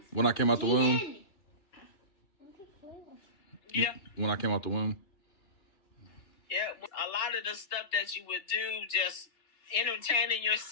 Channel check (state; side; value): late; right; 2.4 ms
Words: When I came out the womb. Yeah. When I came out the womb. Yeah. A lot of the stuff that you would do, just entertaining